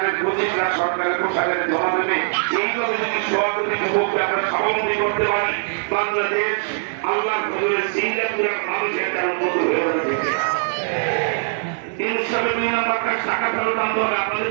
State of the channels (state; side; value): silent; left; digital silence